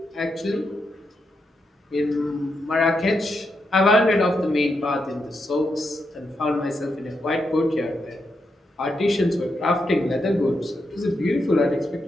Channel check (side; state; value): both; normal; correlation 0.83